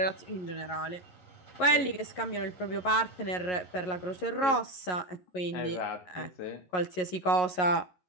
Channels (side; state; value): right; late; 11 ms